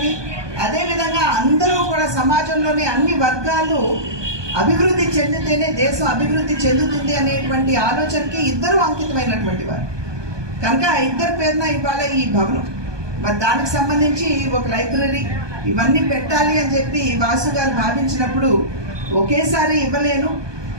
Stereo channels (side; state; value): left; late; 1.2 ms